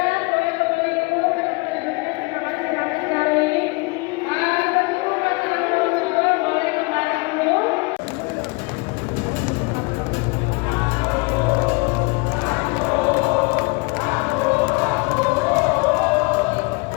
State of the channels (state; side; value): quieter; right; 29.3 dB